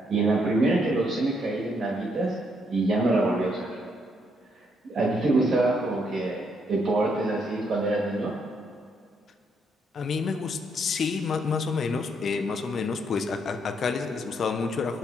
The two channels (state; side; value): normal; both; correlation 0.74